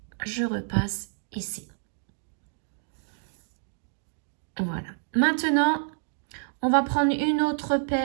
je repasse ici. Voilà. Maintenant, on va prendre une autre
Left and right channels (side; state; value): left; silent; digital silence